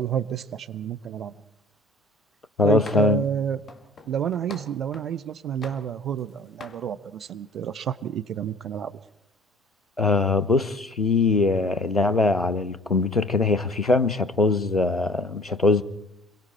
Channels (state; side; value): normal; both; correlation 0.49